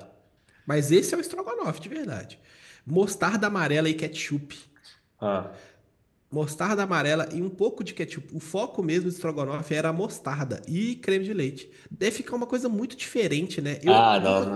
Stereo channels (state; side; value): identical; both; correlation 1.00